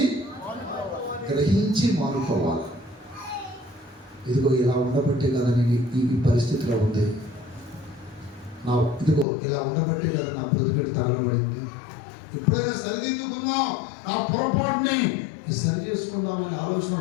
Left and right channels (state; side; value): drops out; right; at 9.2 s